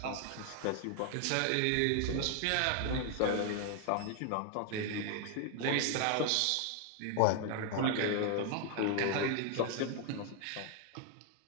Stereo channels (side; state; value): both; different; correlation 0.00